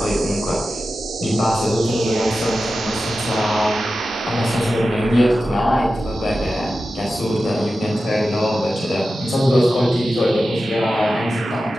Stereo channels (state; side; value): normal; both; correlation 0.93